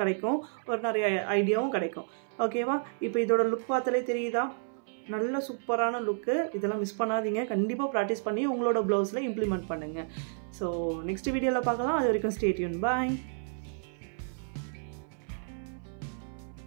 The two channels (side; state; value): left; silent; 57 dB below the other